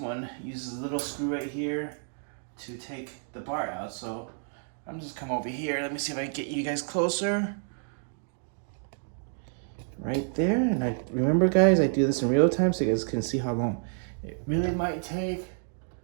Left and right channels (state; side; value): silent; left; 58 dB below the other